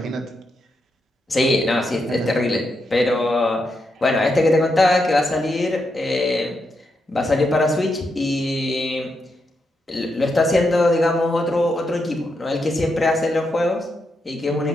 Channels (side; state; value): both; normal; correlation 0.83